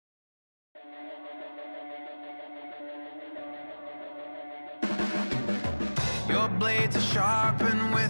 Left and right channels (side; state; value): both; inverted; correlation -1.00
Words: Your blades are sharpened